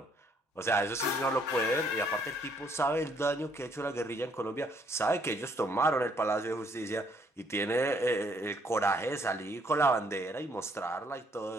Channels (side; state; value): both; normal; correlation 0.67